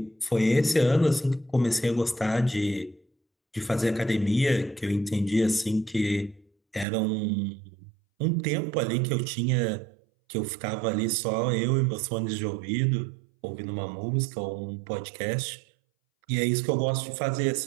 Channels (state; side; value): drops out; left; at 6.9 s